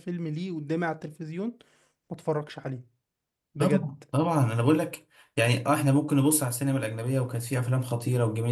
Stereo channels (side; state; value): both; identical; correlation 1.00